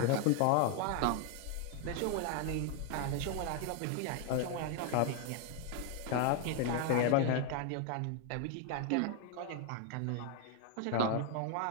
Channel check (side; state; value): both; different; correlation 0.01